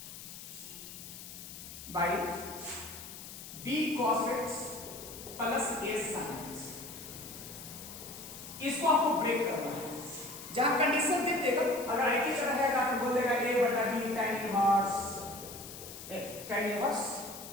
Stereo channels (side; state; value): left; noise; hiss, 12 dB below the sound